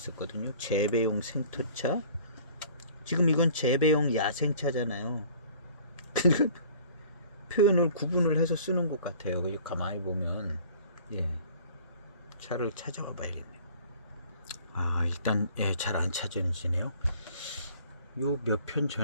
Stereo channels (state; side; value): inverted; both; correlation -0.51